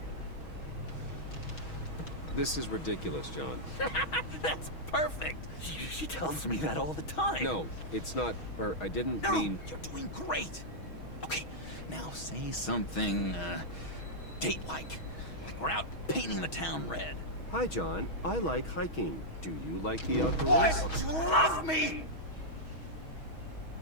This is ridiculous, John. That's perfect. She tells me that all the time. No, it's not, or I didn't No, mean... you're doing great. Okay, now say something, date-like. Like we're out painting the town red. Hi, John. I like hiking. Do you like the outdoors? Why would you love me?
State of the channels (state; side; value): late; right; 6.3 ms